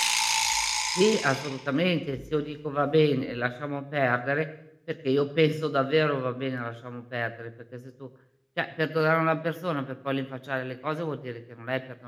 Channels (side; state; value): both; identical; correlation 1.00